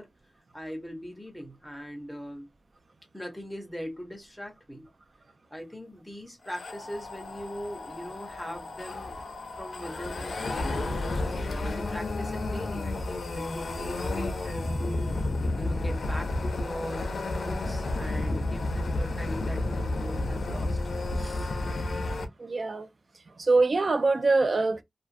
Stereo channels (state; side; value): normal; both; correlation 0.92